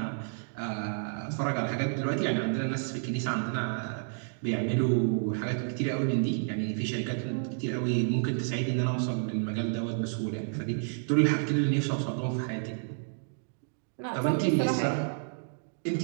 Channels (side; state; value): left; silent; digital silence